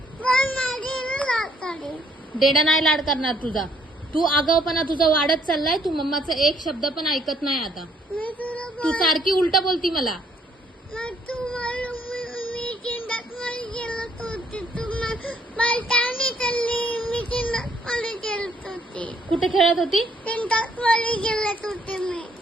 पण माझी लाड करेल. डेडा नाही लाड करणार तुझा. तू आगाऊपणा तुझा वाढत चाललाय. तू मम्माचा एक शब्द पण ऐकत नाही आता. मी तुला तू सारखी उलट बोलती मला. मी चिंतात मध्ये गेलत होती. तू पलटाने चालली. मी चिंतात मध्ये गेलत होती. कुठे खेळत होती? चिंतात मध्ये गेलत होते मी.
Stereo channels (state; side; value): normal; both; correlation 0.66